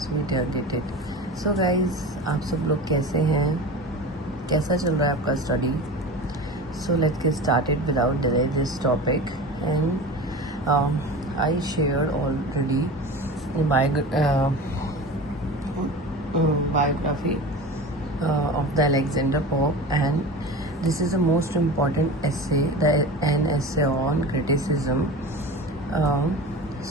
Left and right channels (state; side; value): normal; both; correlation 0.32